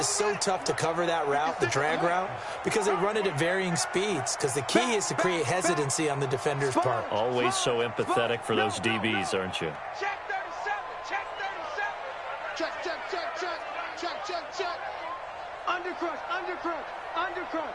so tough to cover that route, the drag route, because they run it at varying speeds. Because the key is to create hesitancy on the defender's part. Always so empathetic for those DBs, aren't you? Check 37. Check 37. Check.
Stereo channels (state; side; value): identical; both; correlation 1.00